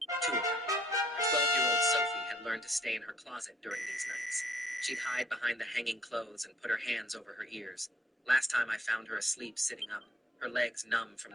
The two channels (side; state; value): both; normal; correlation 0.64